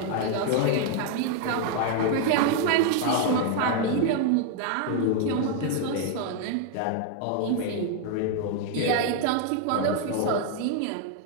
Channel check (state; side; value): different; both; correlation 0.00